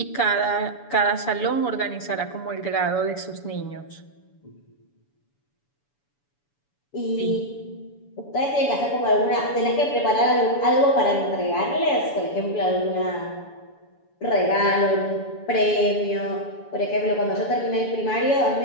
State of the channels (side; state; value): right; late; 7.0 ms